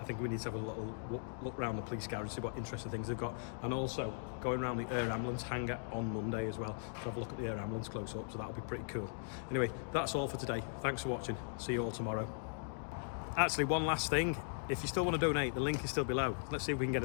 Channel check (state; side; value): silent; right; digital silence